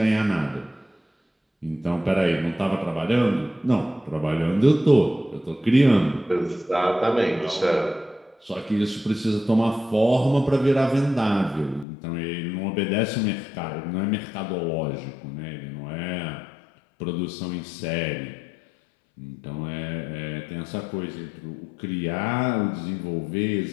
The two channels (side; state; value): right; drops out; at 11.9 s